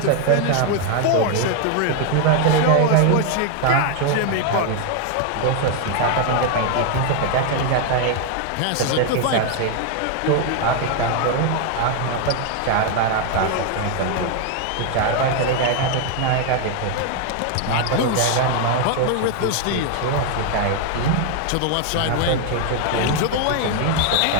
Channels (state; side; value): different; both; correlation 0.00